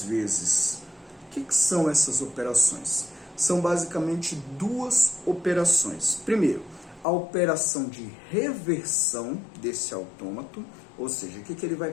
vezes. O que são essas operações? São basicamente 2 operações. Primeiro, a operação de reversão desse autômato, ou seja, o que ele vai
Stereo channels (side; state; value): right; drops out; at 7.1 s